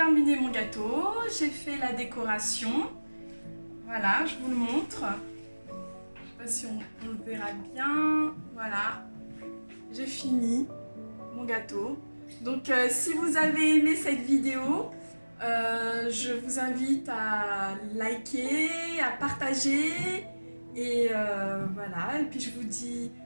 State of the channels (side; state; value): both; inverted; correlation -1.00